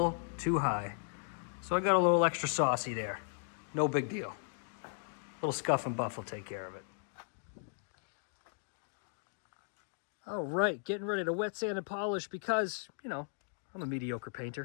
too high. So I got a little extra saucy there. No big deal. A little scuff and buff will take care of it. All right, getting ready to wet sand and polish because, you know, I'm a mediocre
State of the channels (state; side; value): silent; right; digital silence